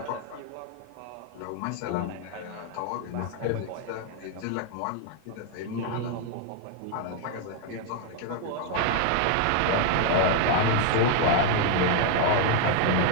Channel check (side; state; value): both; different; correlation 0.00